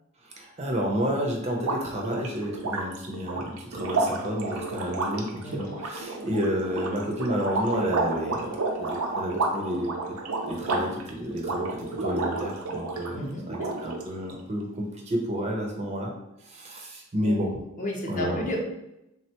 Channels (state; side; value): normal; both; correlation 0.32